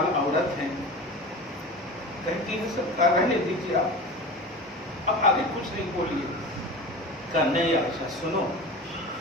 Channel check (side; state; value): both; normal; correlation 0.32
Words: عورت ہیں، کہتی ہے سرکار رہنے دیجیے، آپ اب آگے کچھ نہیں بولیے۔ کہا نہیں عائشہ سنو،